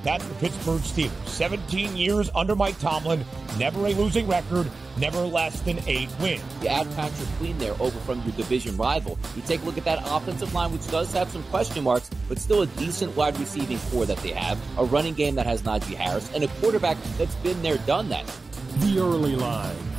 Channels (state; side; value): quieter; left; 3.8 dB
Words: that's the Pittsburgh Steelers. 17 years under Mike Tomlin, never a losing record, never less than 8 wins. You add Patrick Queen there over from your division rival. You take a look at that offensive line, which does have some question marks, but still a decent wide receiving core that they have, a running game that has Najee Harris, and a quarterback that's been there, done that. The early line.